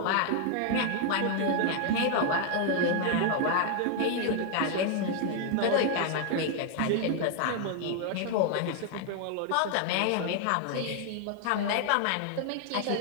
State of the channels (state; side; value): different; both; correlation 0.00